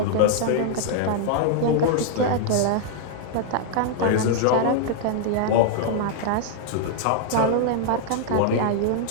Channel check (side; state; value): both; different; correlation 0.00